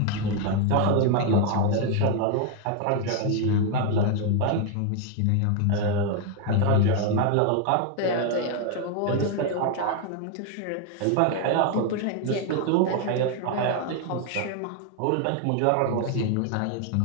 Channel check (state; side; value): different; both; correlation 0.01